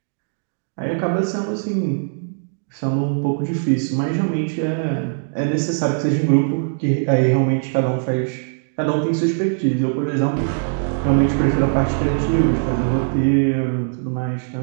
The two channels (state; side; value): silent; left; digital silence